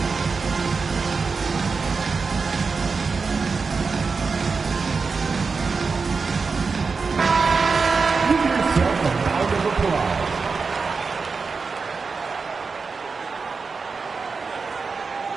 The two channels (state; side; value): quieter; left; 4.8 dB